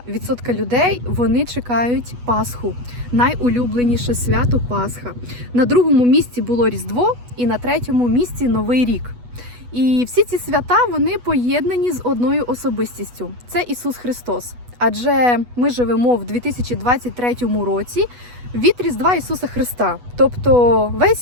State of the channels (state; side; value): late; left; 8.2 ms